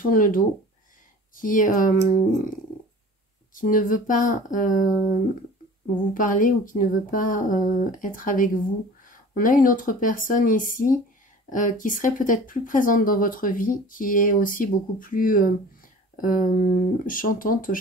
le dos, qui ne veut pas vous parler ou qui ne veut pas être avec vous. On a une autre personne ici qui serait peut-être plus présente dans votre vie, qui est aussi beaucoup plus chantante.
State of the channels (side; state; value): both; normal; correlation 0.42